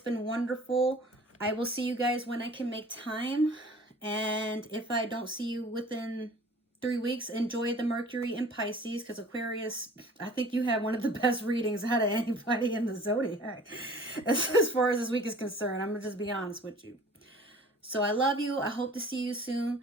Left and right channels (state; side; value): normal; both; correlation 0.47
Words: wonderful. I will see you guys when I can make time. And if I don't see you within 3 weeks, enjoy the Mercury in Pisces, because Aquarius, I think you had one of the best readings out of anybody in the zodiac as far as this week is concerned. I'm going to just be honest with you. So I love you. I hope to see you soon.